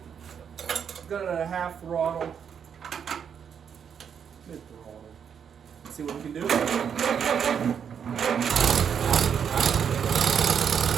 Got it at a half throttle. Mid throttle. See what we can do. The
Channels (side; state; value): left; quieter; 7.6 dB